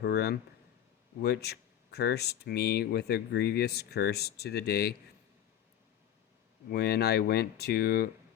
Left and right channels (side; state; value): right; quieter; 10.7 dB